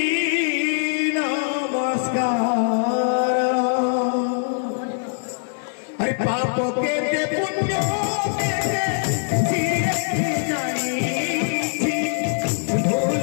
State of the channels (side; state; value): right; silent; 64 dB below the other